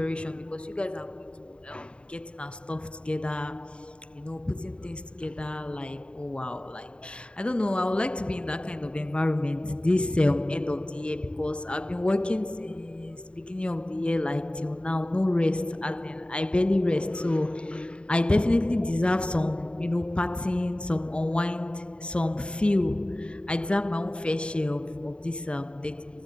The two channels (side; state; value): right; late; 0.055 ms